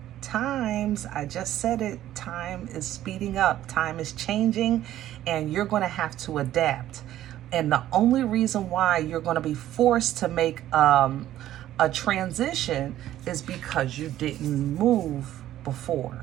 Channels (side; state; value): left; quieter; 13.0 dB